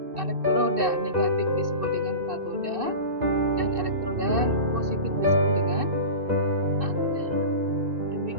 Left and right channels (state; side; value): late; left; 2.6 ms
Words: elektroda negatif disebut dengan katoda dan elektroda positif disebut dengan anoda.